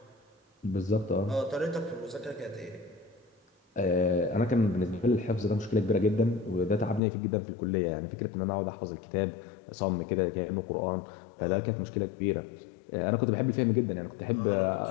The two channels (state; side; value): drops out; right; at 7.0 s